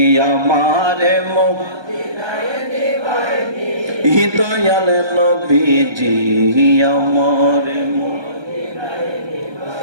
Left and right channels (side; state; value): left; late; 1.3 ms